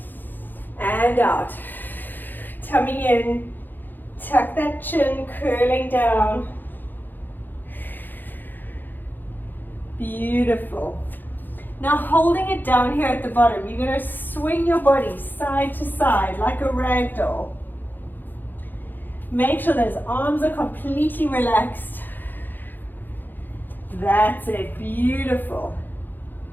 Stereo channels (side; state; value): right; late; 0.090 ms